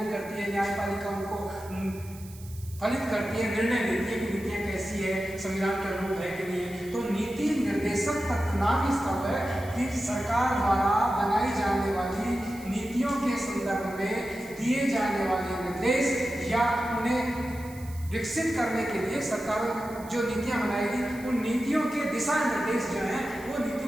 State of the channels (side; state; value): right; noise; hiss, 20 dB below the sound